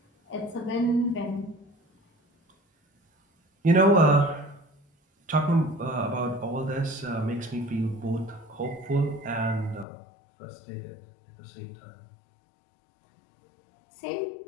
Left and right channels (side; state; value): right; drops out; at 9.9 s